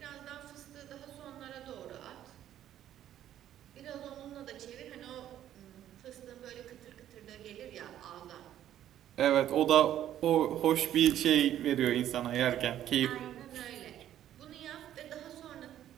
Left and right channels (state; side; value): quieter; left; 11.6 dB